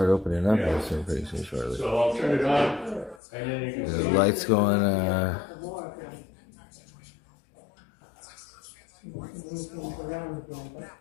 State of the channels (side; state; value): right; drops out; at 3.2 s